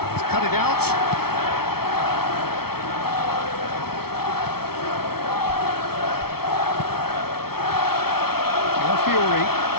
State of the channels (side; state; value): right; late; 0.95 ms